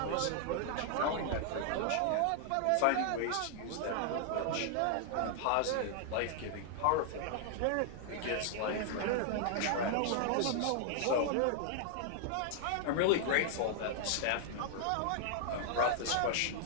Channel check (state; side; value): different; both; correlation 0.00